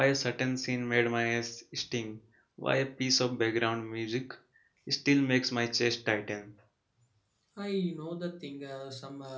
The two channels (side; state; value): both; identical; correlation 1.00